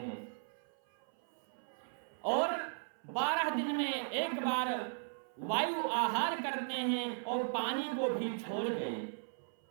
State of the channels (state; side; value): silent; left; 53 dB below the other